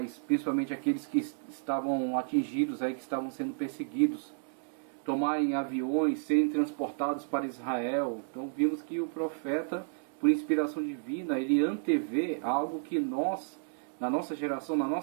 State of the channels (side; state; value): left; silent; digital silence